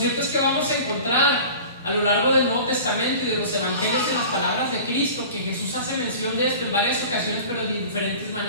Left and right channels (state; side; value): inverted; both; correlation -0.39